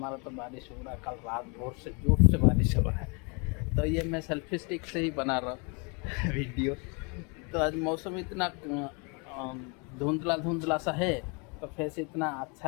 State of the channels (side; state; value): right; quieter; 33.0 dB